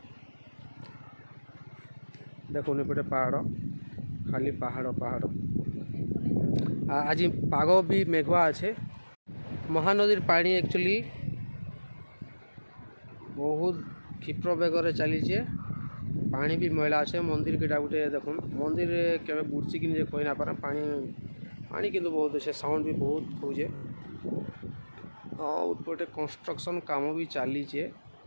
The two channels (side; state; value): both; inverted; correlation -1.00